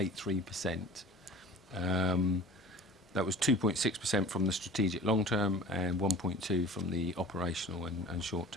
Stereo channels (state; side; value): normal; both; correlation 0.42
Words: That was 2.6% from the strategic long-term and 1.2% from the operational and